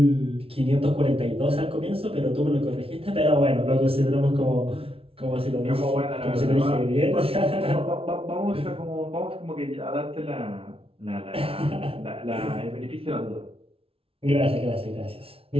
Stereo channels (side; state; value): left; late; 0.27 ms